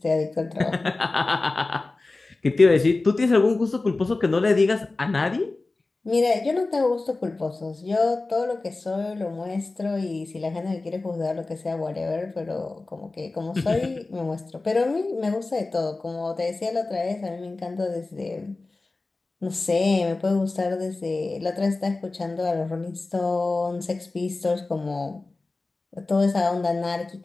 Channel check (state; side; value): quieter; right; 3.3 dB